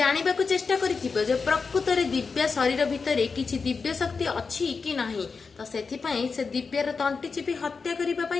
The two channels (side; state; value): right; quieter; 4.9 dB